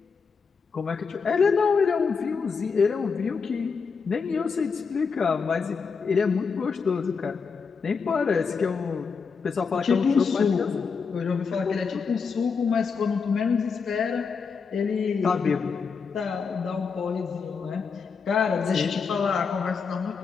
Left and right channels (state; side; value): quieter; right; 5.4 dB